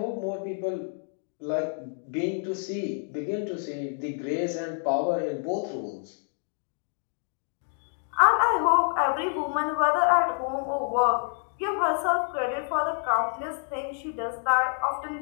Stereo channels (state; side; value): silent; right; 59 dB below the other